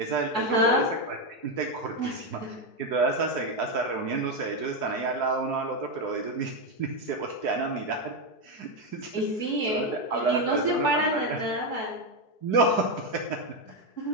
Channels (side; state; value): right; late; 4.6 ms